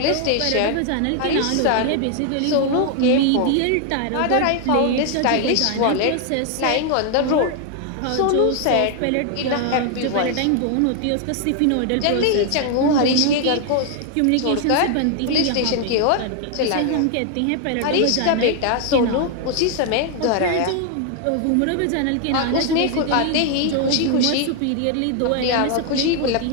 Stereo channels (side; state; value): both; different; correlation 0.00